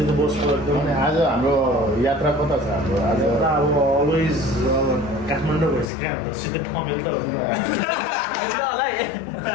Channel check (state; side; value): drops out; right; at 5.9 s